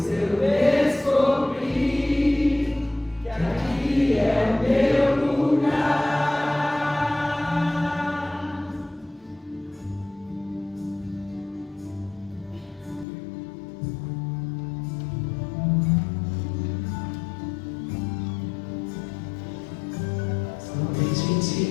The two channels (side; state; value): right; drops out; at 13.1 s